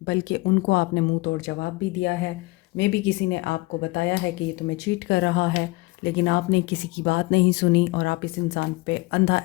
बल्कि उनको आपने मुंह तोड़ जवाब भी दिया है। मे बी किसी ने आपको बताया है कि ये तुम्हें चीट कर रहा है, लेकिन आपने किसी की बात नहीं सुनी और आप इस इंसान पे अंधा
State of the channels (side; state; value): right; quieter; 22.7 dB